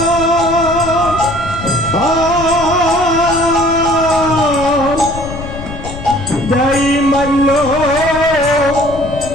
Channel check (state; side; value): noise; left; rumble, 11 dB below the sound